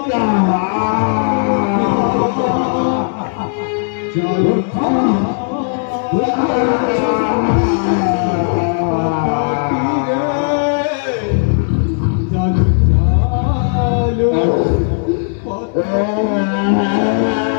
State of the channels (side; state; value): right; silent; digital silence